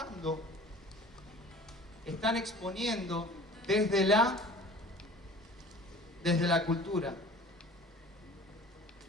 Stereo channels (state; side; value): normal; both; correlation 0.45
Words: están exponiendo desde la cultura.